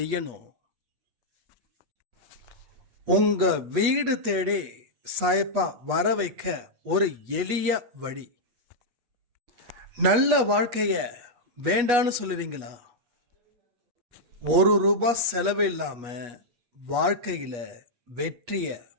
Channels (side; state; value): left; late; 8.4 ms